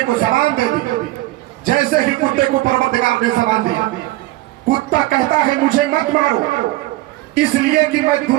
کو زبان دے دی. جیسے ہی کتے کو پروردگار نے زبان دی, کتا کہتا ہے مجھے مت مارو, اس لیے کہ میں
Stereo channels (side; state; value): left; quieter; 18.0 dB